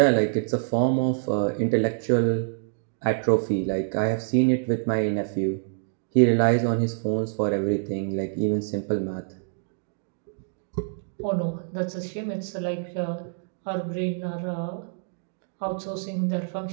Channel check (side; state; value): left; silent; digital silence